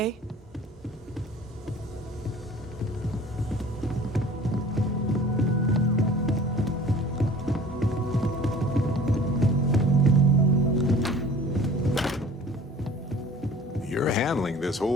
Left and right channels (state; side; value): normal; both; correlation 0.46